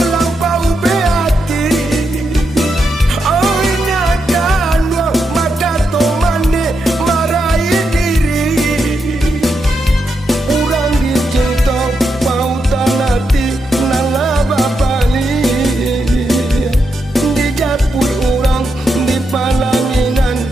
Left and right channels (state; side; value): normal; both; correlation 0.83